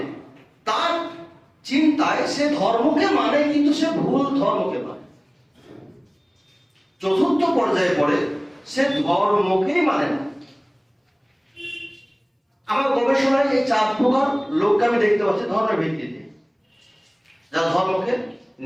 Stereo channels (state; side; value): identical; both; correlation 1.00